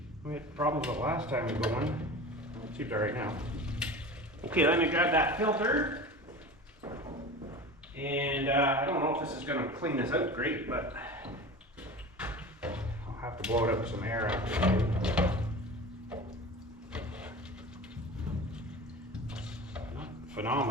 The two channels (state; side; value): normal; both; correlation 0.34